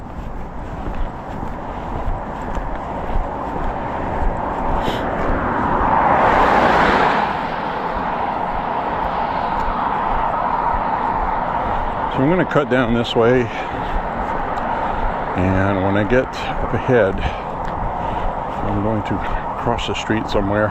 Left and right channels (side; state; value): both; identical; correlation 1.00